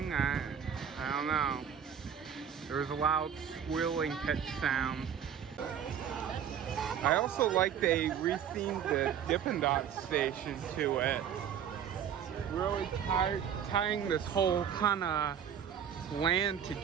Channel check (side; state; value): left; quieter; 8.5 dB